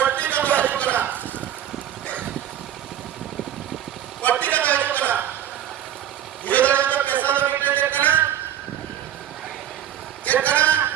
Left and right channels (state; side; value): quieter; left; 10.9 dB